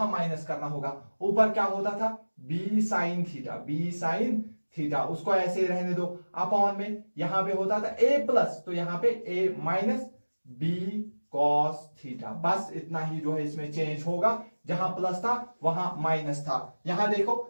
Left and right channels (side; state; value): both; inverted; correlation -1.00